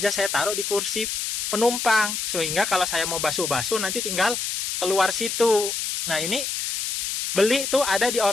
saya taruh di kursi penumpang, sehingga kalau saya mau basuh-basuh nanti tinggal keluar situ. Nah, ini beli tuh ada di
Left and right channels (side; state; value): left; noise; hiss, 2 dB below the sound